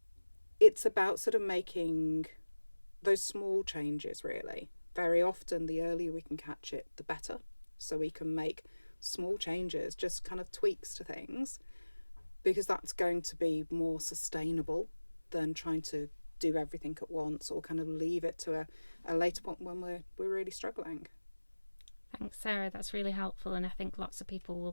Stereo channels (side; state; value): both; inverted; correlation -1.00